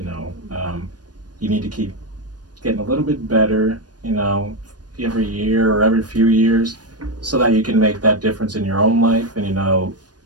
know, you need to keep getting a little bit better. You know, every year or every few years, so that you can make that difference in your own life, and you know,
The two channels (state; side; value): late; left; 0.69 ms